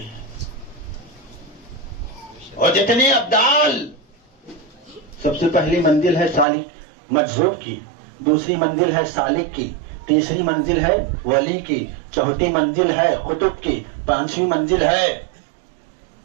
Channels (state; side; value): drops out; left; at 6.5 s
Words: اور جتنے ابدال, سب سے پہلی منزل ہے سالک مجذوب کی, دوسری منزل ہے سالک کی, تیسری منزل ہے ولی کی, چوتھی منزل ہے قطب کی, پانچویں منزل ہے